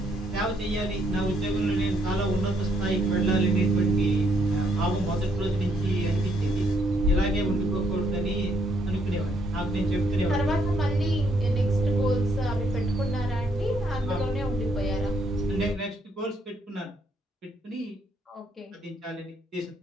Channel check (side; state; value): both; normal; correlation 0.71